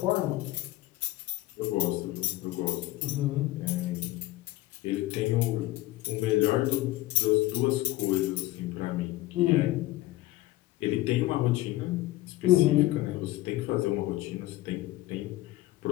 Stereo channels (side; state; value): right; quieter; 17.3 dB